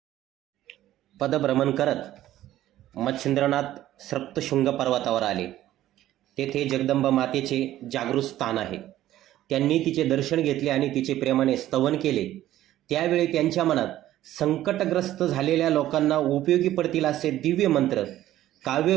पदभ्रमण करत मच्छिंद्रनाथ सप्तशृंग पर्वतावर आले. तेथे जगदंबा मातेचे जागृत स्थान आहे. त्यांनी तिचे दर्शन घेतले आणि तिचे प्रेमाने स्तवन केले. त्यावेळी त्यांच्या मनात संकटग्रस्त झालेल्या लोकांना उपयोगी पडतील असे दिव्य मंत्र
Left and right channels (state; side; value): quieter; left; 13.7 dB